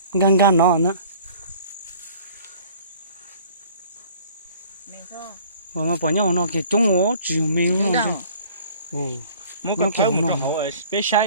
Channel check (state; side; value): inverted; both; correlation -0.50